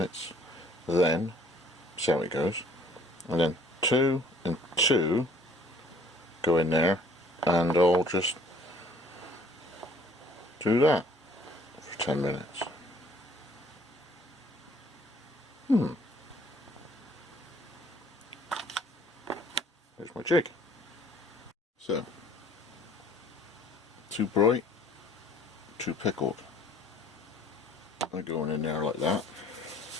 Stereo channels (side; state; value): both; normal; correlation 0.57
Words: then see how it goes, and then 2 and 2 go in there, and I'll just do that for 10 minutes. There's my jig. So, 2 bright, 2 pickled. They're going in there like that.